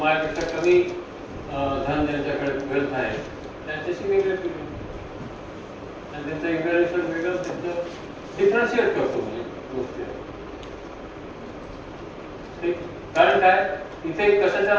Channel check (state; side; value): identical; both; correlation 1.00